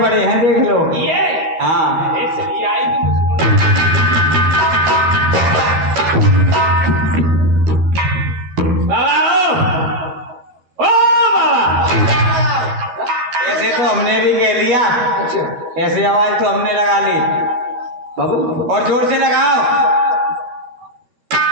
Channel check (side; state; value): left; late; 12 ms